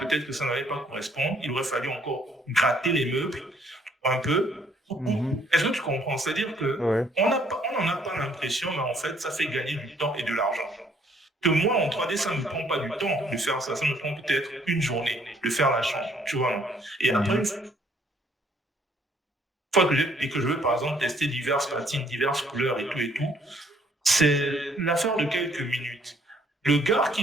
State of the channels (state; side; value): normal; both; correlation 0.64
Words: que ça n'allait pas correspondre. Il aurait fallu encore gratter les meubles un peu. Mhm. Est-ce que tu comprends? C'est-à-dire que Ouais. on n'en a pas l'impression, mais en fait, ça fait gagner du temps et de l'argent. Que moi, en 3D, ça ne me prend pas du temps de faire ça. Ça me prend peut-être une journée de faire la chambre, tu vois. Et après, une Mhm. fois que je veux, par exemple, tester diverses patines, diverses couleurs et tout, c'est l'affaire de quelques minutes. Le gars